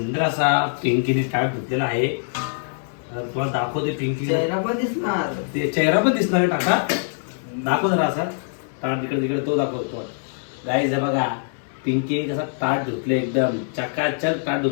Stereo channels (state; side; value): silent; right; digital silence